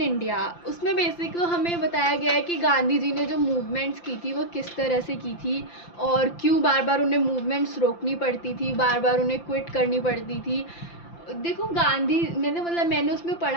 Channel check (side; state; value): right; late; 5.8 ms